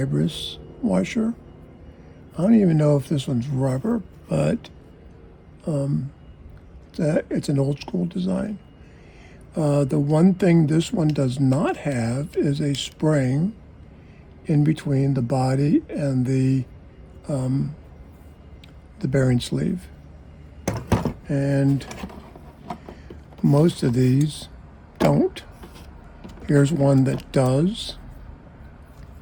washer. I don't even know if this one's rubber, but it's an old school design. The one thing this one does not have is a spring in between the body and the bearing sleeve. And most of these don't. Here's one that does.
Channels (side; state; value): both; identical; correlation 1.00